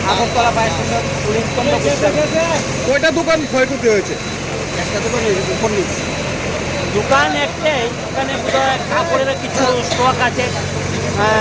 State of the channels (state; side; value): identical; both; correlation 1.00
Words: Agartala fire station কয়টা দোকান ক্ষয়ক্ষতি হয়েছে? একটা দোকান হয়েছে, দোকান একটাই। এখানে বোধহয় কাপড়ের কিছু স্টক আছে,